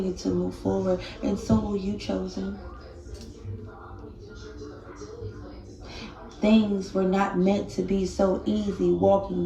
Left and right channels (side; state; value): both; identical; correlation 1.00